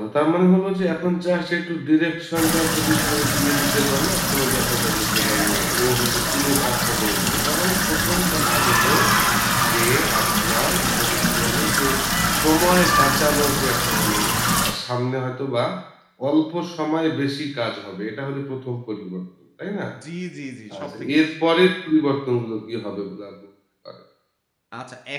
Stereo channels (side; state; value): both; identical; correlation 1.00